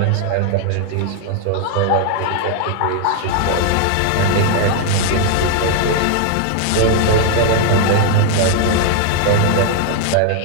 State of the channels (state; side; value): different; both; correlation 0.00